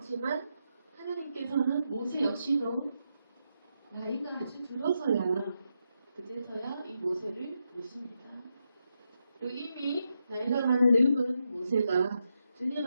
하나님께서는 모세 역시도 나이가 아주 들어서야 그제서야 이 모세를 부르십니다. 그리고 이미 나이가 많은 늙은 모세가 주님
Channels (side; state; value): both; inverted; correlation -0.84